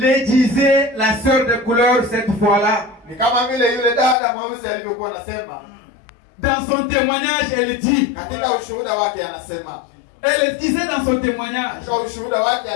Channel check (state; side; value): drops out; right; at 4.2 s